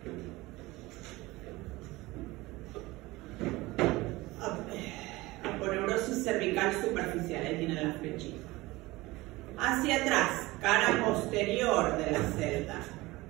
Aponeurosis cervical superficial, ahí tiene la flechita. Hacia atrás, cara posterior de la celda.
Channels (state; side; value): quieter; left; 20.4 dB